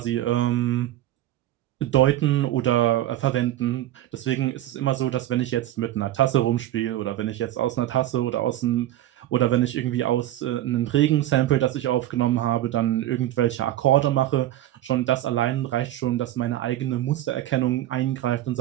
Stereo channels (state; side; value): quieter; left; 13.6 dB